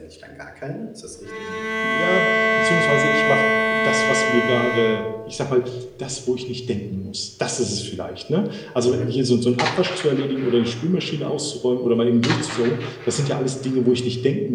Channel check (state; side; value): identical; both; correlation 1.00